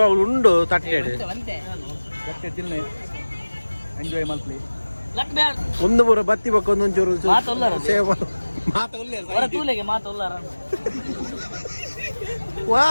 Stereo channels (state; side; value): inverted; both; correlation -1.00